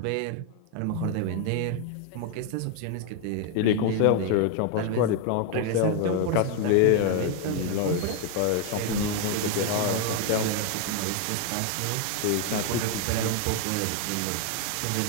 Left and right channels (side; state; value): both; different; correlation 0.01